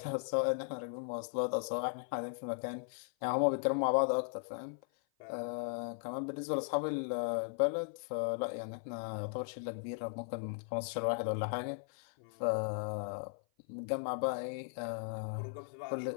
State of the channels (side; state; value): right; silent; 53 dB below the other